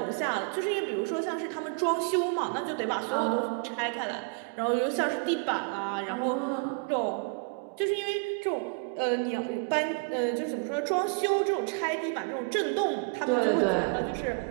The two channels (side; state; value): left; quieter; 34.5 dB